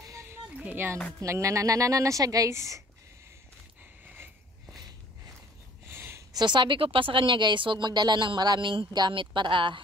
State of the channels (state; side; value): normal; both; correlation 0.54